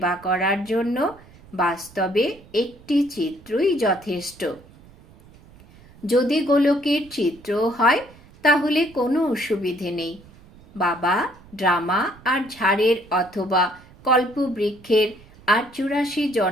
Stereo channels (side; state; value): right; noise; rumble, 24 dB below the sound